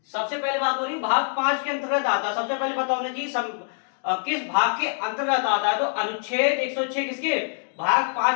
सबसे पहले बात हो रही भाग 5 के अंतर्गत आता है। सबसे पहले पता होना चाहिए किस भाग के अंतर्गत आता है। तो अनुच्छेद 106 किसके भाग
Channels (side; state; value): right; silent; 58 dB below the other